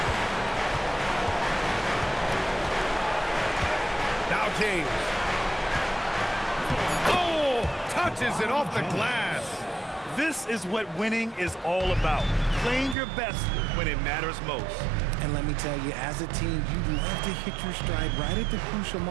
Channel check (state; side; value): drops out; left; at 13.0 s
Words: Now James. Oh, touches it off the glass. This is what winning is all about. Playing your best when it matters most. And let me tell you, as a team, you love to hit your stride right at the crucial